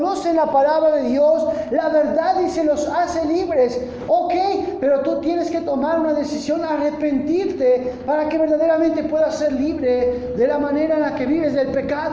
la palabra de Dios, la verdad dice, los hace libres. Ok, pero tú tienes que tomar una decisión, arrepentirte, para que verdaderamente puedas ser libre de la manera en la que vives del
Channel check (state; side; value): identical; both; correlation 1.00